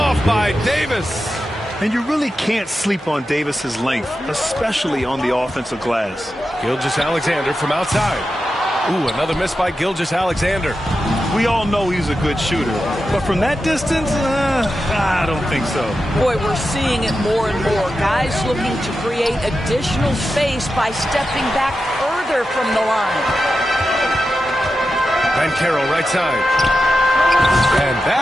by Davis. And you really can't sleep on Davis's length, especially on the offensive glass. Gilgeous-Alexander from outside. Ooh, another miss by Gilgeous-Alexander. We all know he's a good shooter, but from that distance, I don't think so. Boy, we're seeing it more and more. Guys looking to create additional space by stepping back further from the line. Banchero right side. And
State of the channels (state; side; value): normal; both; correlation 0.90